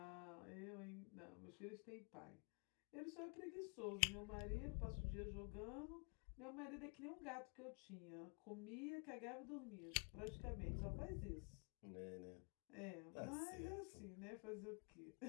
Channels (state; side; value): quieter; right; 37.4 dB